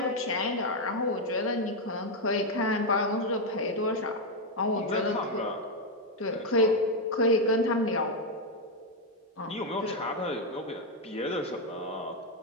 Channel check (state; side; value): normal; both; correlation 0.03